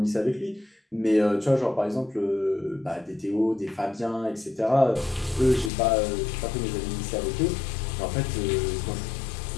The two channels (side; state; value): right; drops out; at 5.7 s